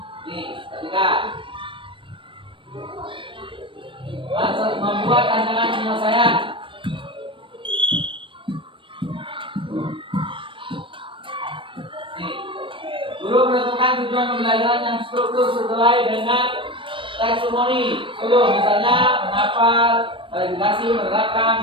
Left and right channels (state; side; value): late; left; 0.25 ms